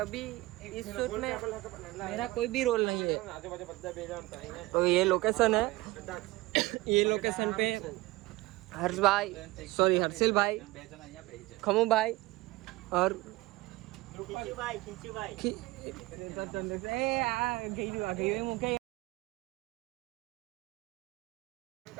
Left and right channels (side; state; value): left; quieter; 20.3 dB